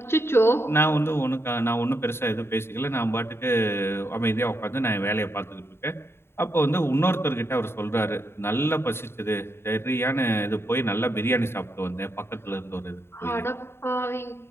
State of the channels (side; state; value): right; late; 0.12 ms